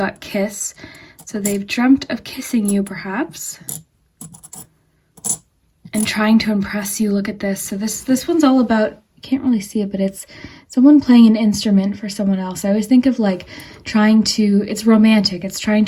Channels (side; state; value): both; identical; correlation 1.00